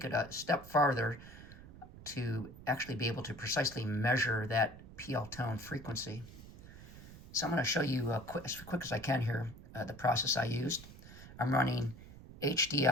it a step farther to actually be able to precisely measure that PL tone frequency. So I'm going to show you as quick as I can here the process I used. I'm running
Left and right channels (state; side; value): noise; right; rumble, 16 dB below the sound